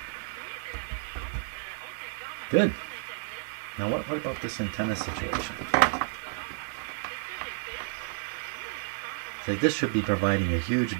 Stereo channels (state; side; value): silent; left; digital silence